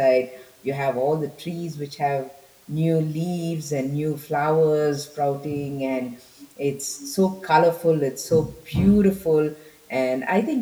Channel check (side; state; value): both; identical; correlation 1.00